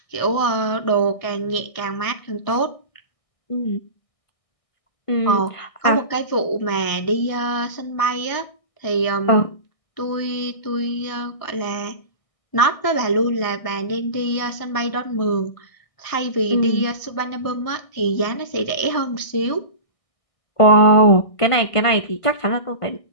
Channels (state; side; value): late; right; 1.6 ms